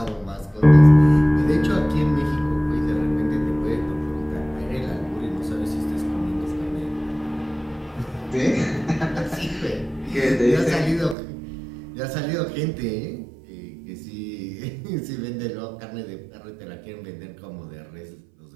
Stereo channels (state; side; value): drops out; left; at 11.2 s